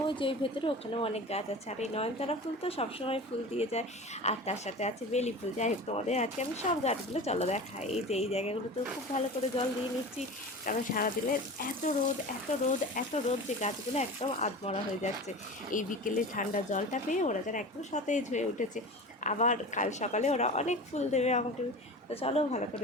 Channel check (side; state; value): both; normal; correlation 0.33